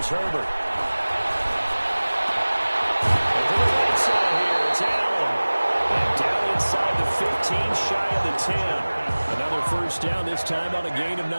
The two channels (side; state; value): both; inverted; correlation -1.00